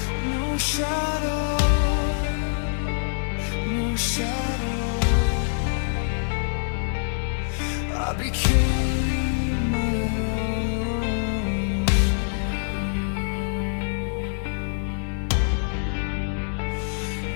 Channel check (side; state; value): right; silent; 57 dB below the other